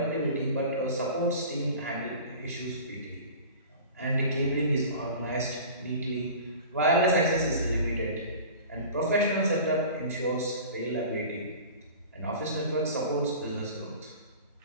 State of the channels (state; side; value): inverted; both; correlation -0.39